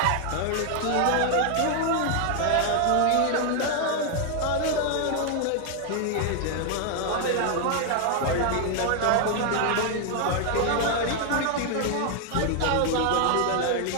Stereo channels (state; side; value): different; both; correlation 0.00